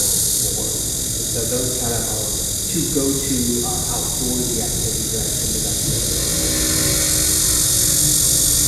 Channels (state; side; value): identical; both; correlation 1.00